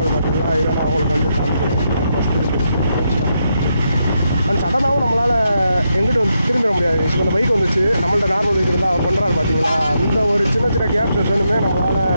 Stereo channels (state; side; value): inverted; both; correlation -0.82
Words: பார்த்தீங்கன்னா இதை நான் அவங்களுக்கு வந்து காமிக்கிறேன். அண்ட் சடனாகவும் நம்மளால் எங்கிட்ட வந்து திரும்பிட முடியாது. இப்போ இந்த பைக் வந்துச்சு, நம்மள்ட்ட நார்மல் பைக் இருந்தால் அவர் பண்ணுறாரு பார்த்தீங்களா, அந்த ஒரு சின்ன சின்ன கேப் செஷனுமே நம்மளால்